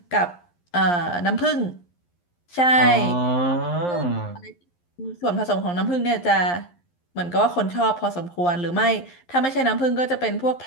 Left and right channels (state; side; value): late; right; 11 ms